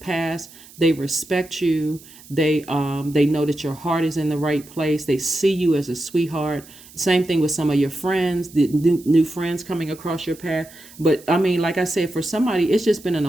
They respect you. They know that your heart is in the right place. They see you as a sweetheart. Same thing with some of your friends, the new friends coming across your path. But I mean, like I said, for somebody, it's just been an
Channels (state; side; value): noise; right; hiss, 21 dB below the sound